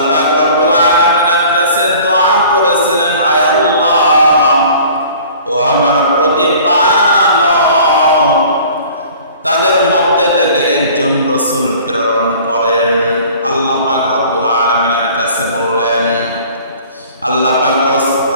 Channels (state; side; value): inverted; both; correlation -0.48